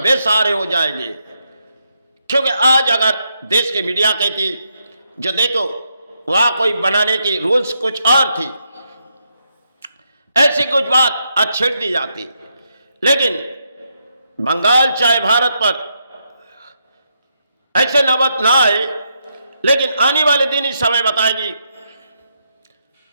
हो जाएंगे। क्योंकि आज अगर देश की मीडिया कहती, जो देखो वहां कोई बनाने की रूल्स कुछ और थी, ऐसी कुछ बात आज छेड़ दी जाती। लेकिन बंगाल चाहे भारत पर ऐसे नौबत ना आए, लेकिन आने वाले दिन ही समय बताएगी,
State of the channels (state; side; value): inverted; both; correlation -0.80